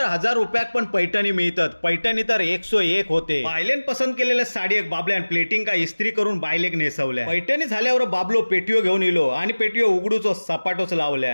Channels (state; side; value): inverted; both; correlation -1.00